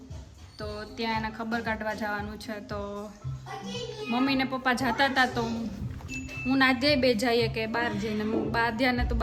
તો ત્યાં એના ખબર કાઢવા જવાનું છે. તો મમ્મી ને પપ્પા જતા હતા તો હું ને આધ્યાય બે જઈએ કે બહાર જઈને, આધ્યાને તો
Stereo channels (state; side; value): identical; both; correlation 1.00